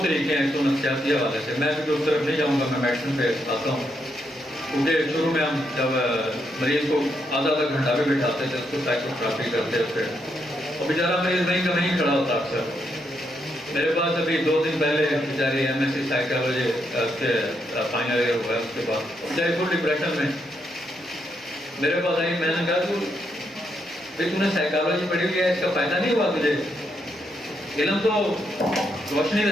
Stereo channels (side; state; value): both; normal; correlation 0.79